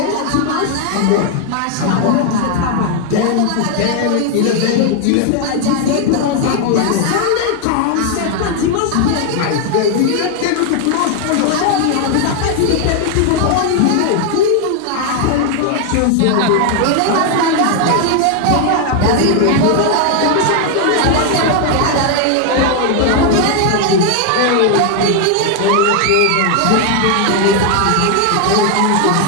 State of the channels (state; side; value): different; both; correlation 0.00